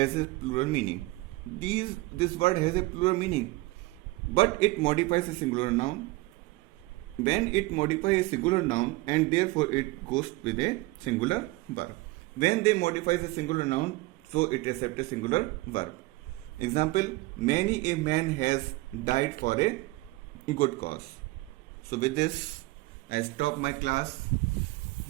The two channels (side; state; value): left; quieter; 21.6 dB